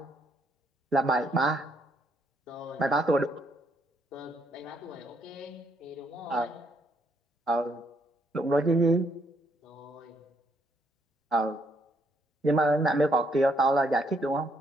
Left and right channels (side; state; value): both; normal; correlation 0.72